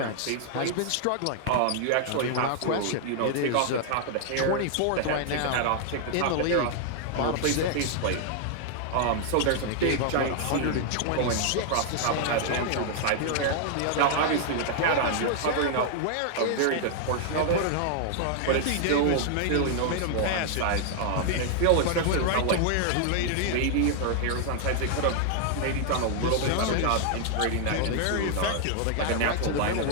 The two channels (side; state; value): both; different; correlation 0.00